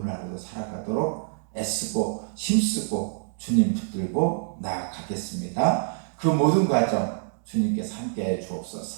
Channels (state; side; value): silent; left; 61 dB below the other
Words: 하루도 살아가도록 애쓰고 힘쓰고 주님 붙들고 나아가겠습니다. 그 모든 과정 주님께서 함께해